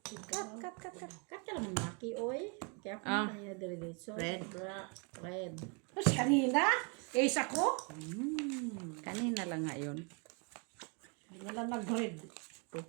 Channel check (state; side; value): quieter; left; 34.2 dB